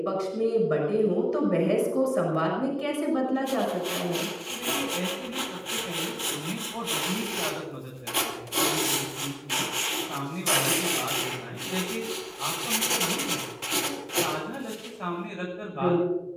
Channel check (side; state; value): both; identical; correlation 1.00